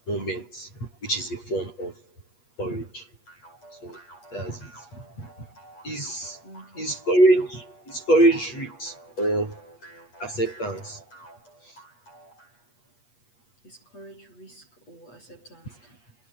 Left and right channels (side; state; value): right; late; 8.3 ms